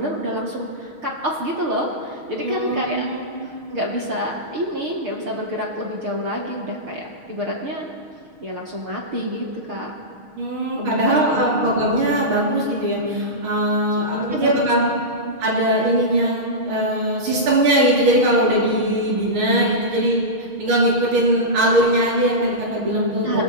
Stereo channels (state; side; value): late; left; 6.4 ms